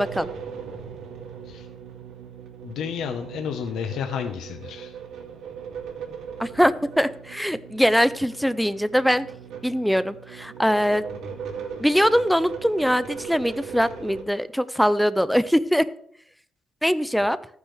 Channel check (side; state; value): both; normal; correlation 0.96